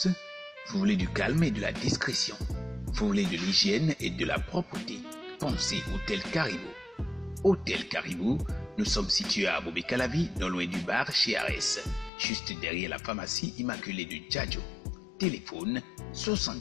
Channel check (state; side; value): drops out; right; at 12.1 s